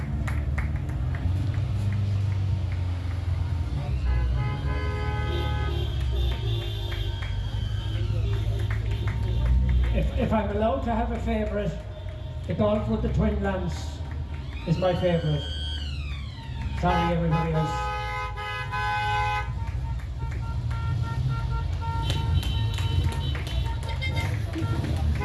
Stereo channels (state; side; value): identical; both; correlation 1.00